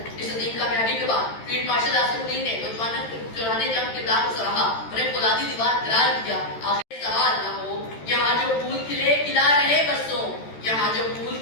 عظیم کامیابی کے بعد فیلڈ مارشل آصف الدین نے نوجوانوں کے چورانے جنگ کردار کو سراہا، انہیں فولادی دیوار قرار دیا۔ آخر سوال نہ ہو، یہاں جو پھول کھلے کھلا رہے برسوں، یہاں جو پھول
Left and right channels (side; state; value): right; late; 13 ms